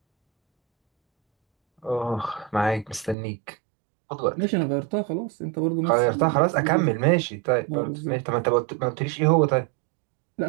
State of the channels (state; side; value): drops out; left; at 3.2 s